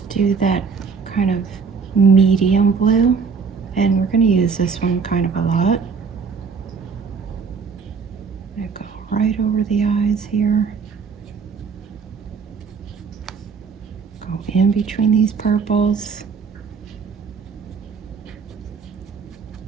do that kind of medium blue, and we're going to use this one kind of a lot. I'm going to go right over the eyes here, go in between these purples.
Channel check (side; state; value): left; quieter; 5.6 dB